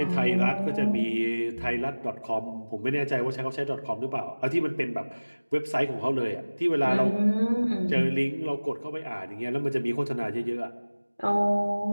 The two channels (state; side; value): inverted; both; correlation -1.00